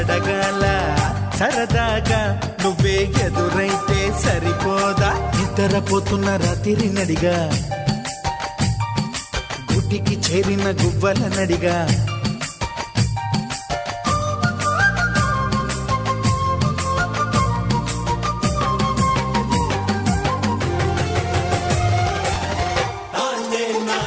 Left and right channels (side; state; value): both; identical; correlation 1.00